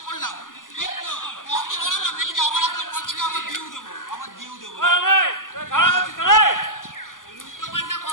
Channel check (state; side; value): late; right; 0.88 ms